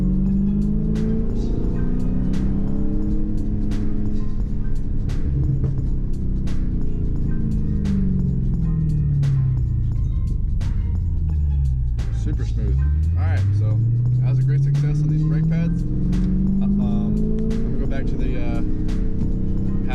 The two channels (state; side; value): identical; both; correlation 1.00